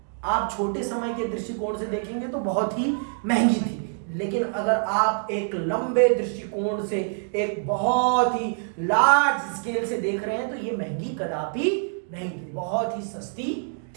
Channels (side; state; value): left; silent; digital silence